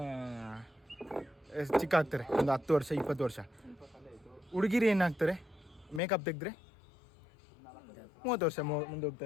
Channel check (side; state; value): right; drops out; at 6.0 s